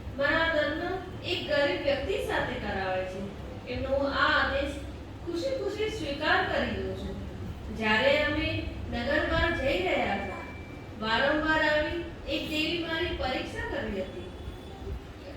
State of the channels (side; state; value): both; identical; correlation 1.00